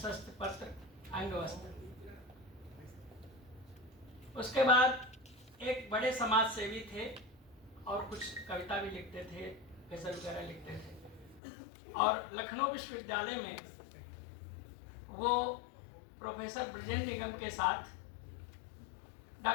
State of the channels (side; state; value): right; drops out; at 11.4 s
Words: पत्र, अंगवस्त्र। उसके बाद एक बड़े समाज सेवी थे और कुछ कविता भी लिखते थे, गजल वगैरह लिखते थे। और लखनऊ विश्वविद्यालय में वो प्रोफेसर ब्रजेंद्र निगम के साथ